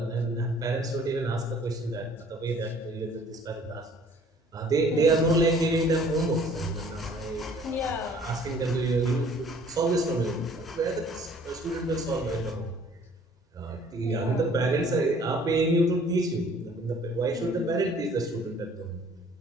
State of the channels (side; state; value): both; normal; correlation 0.55